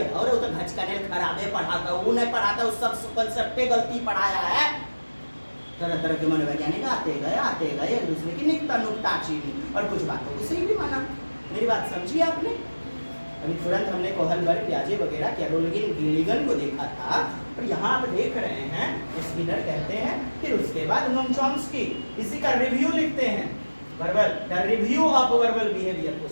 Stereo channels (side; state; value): both; inverted; correlation -1.00